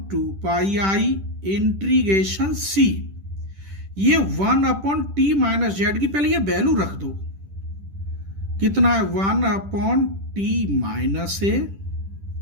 इंटीग्रेशन c, ये 1/t-z की पहले ये वैल्यू रख दो। कितना है? 1/t-a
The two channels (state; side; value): late; left; 10 ms